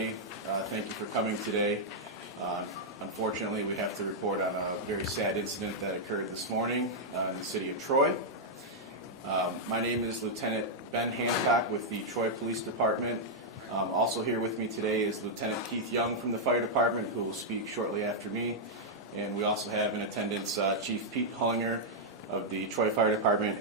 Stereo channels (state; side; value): normal; both; correlation -0.05